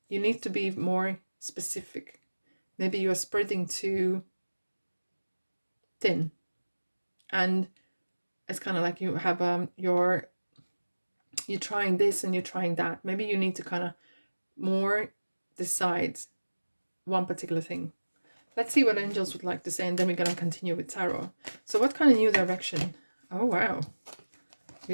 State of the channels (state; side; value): inverted; both; correlation -1.00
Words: You need to be more specific. Maybe you're spreading too thin. And it's kind of like you have you're trying this and you're trying that. Maybe you need to kind of more decide one particular thing. Let's see what angels would like to say, and then we're going to continue with tarot. So what kind of new direction? Oh, wow.